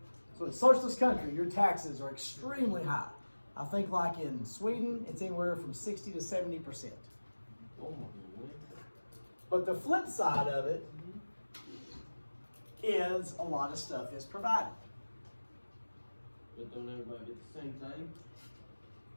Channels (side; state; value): both; inverted; correlation -1.00